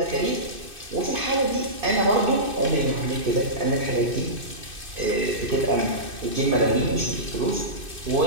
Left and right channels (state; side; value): late; left; 2.5 ms